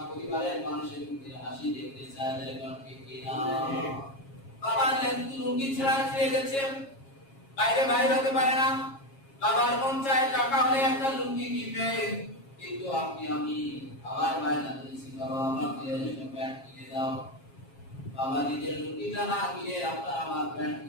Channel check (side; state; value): right; late; 7.4 ms